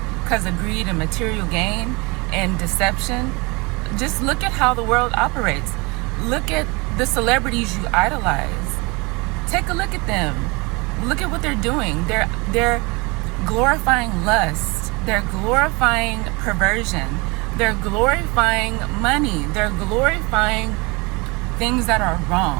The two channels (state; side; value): quieter; left; 26.8 dB